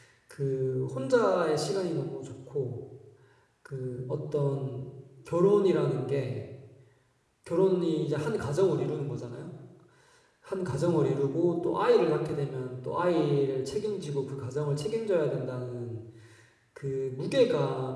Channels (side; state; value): both; identical; correlation 1.00